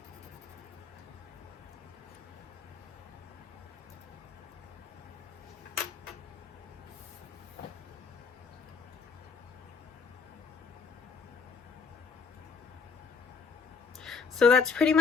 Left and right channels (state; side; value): quieter; right; 5.4 dB